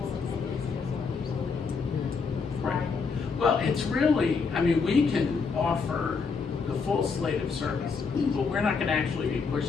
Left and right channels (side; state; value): right; quieter; 5.1 dB